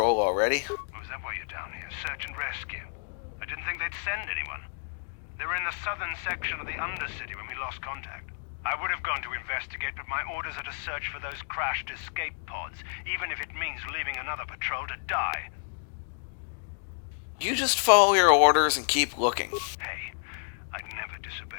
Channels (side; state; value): right; silent; digital silence